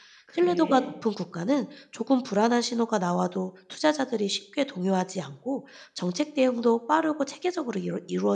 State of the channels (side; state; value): both; identical; correlation 1.00